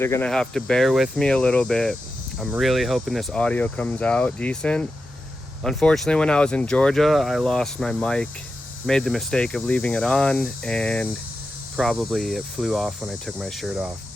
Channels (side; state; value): both; normal; correlation 0.90